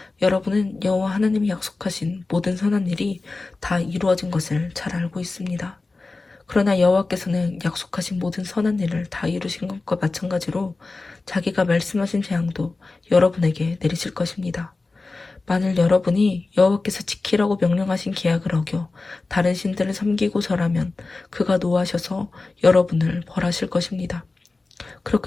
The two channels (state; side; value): quieter; right; 3.6 dB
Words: 여러분은 여호와 하나님이 약속하신 모든 선한 일이 다 이루어진 것을 잘 알고 있습니다. 그러나 여호와께서는 약속하신 모든 선한 일을 다 이루신 것과 마찬가지로 자기가 말씀하신 재앙도 여러분에게 내리실 것입니다. 만일 여러분이 여호와께서 지키라고 명령하신 계약을 어겨 다른 신들을 섬기고 절하면 그가 노하셔서 여러분을 벌하실 것입니다.